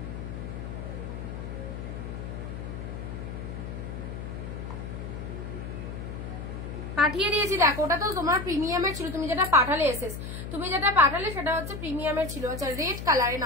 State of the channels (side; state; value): left; noise; hum, 7 dB below the sound